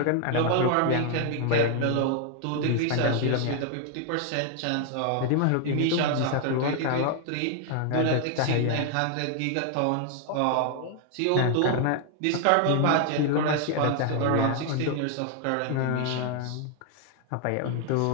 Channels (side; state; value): both; different; correlation 0.00